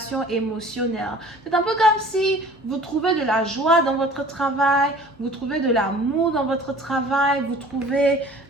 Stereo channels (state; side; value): normal; both; correlation 0.47